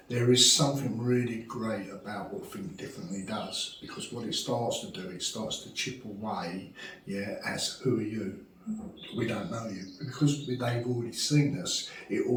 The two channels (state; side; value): identical; both; correlation 1.00